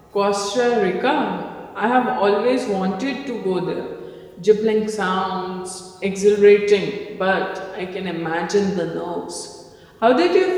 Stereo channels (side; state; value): both; identical; correlation 1.00